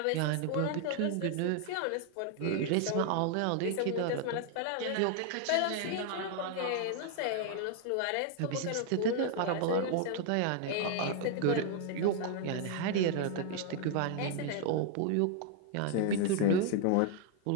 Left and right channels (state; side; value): different; both; correlation 0.00